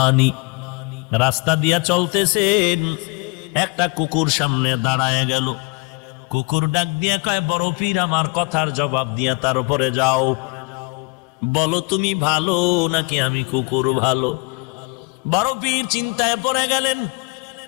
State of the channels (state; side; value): quieter; right; 29.5 dB